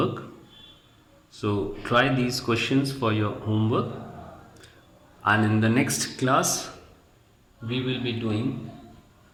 So try these questions for your homework, and in the next class we will be doing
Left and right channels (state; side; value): identical; both; correlation 1.00